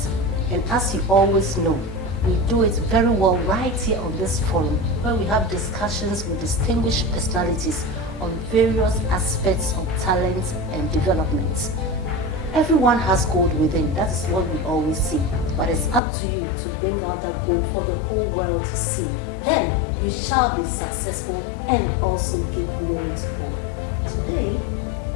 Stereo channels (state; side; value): drops out; right; at 16.0 s